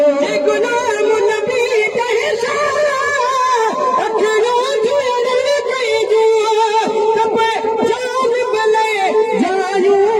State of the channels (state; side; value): identical; both; correlation 1.00